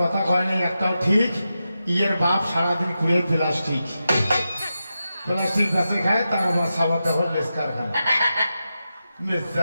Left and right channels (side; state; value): both; inverted; correlation -0.90